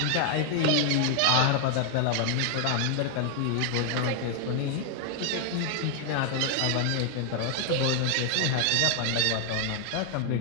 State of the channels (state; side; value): different; both; correlation 0.00